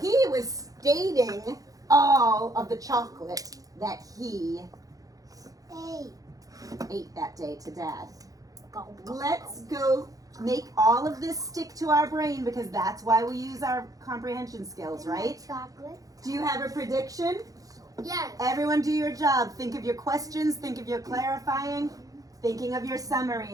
was stating all of the chocolate that he ate that day to Dad. Let's go make all of this stick to our brain because that's why we use our comprehension skills, right? Chocolate. Do you have a prediction? Yes. Everyone do your job. Think of your questions, think of your clarifying, thinking of your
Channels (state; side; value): late; left; 0.17 ms